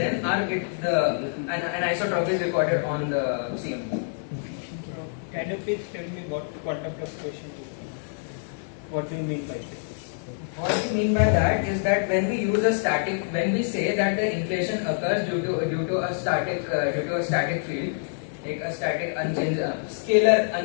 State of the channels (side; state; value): right; silent; digital silence